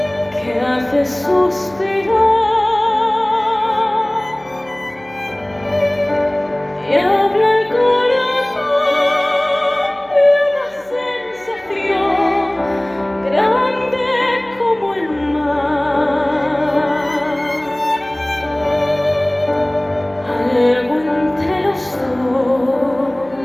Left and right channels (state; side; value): noise; right; hum, 27 dB below the sound